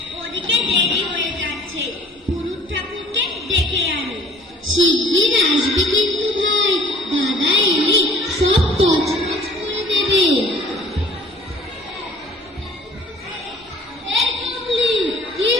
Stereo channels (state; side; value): normal; both; correlation 0.54